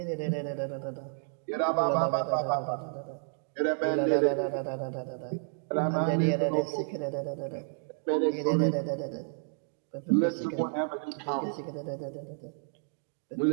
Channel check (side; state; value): left; silent; digital silence